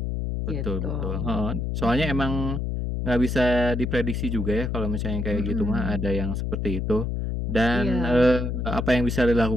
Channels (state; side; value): noise; left; hum, 1 dB below the sound